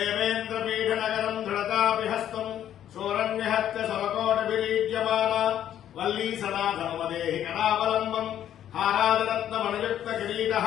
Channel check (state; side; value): quieter; right; 10.8 dB